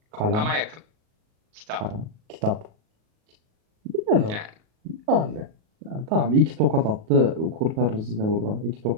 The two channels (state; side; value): late; left; 38 ms